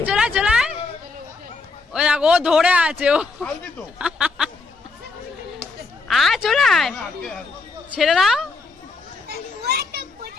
ওই দেখো, ও ধরে আছে, ও চলে ছেড়ে দাও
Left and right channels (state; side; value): quieter; right; 4.0 dB